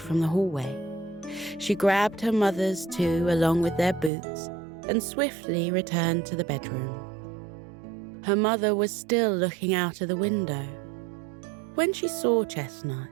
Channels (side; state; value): left; drops out; at 4.1 s